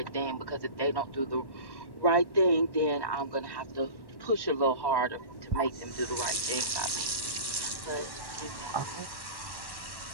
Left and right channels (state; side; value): late; right; 1.1 ms